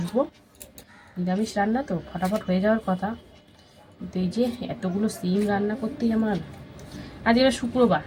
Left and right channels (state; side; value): identical; both; correlation 1.00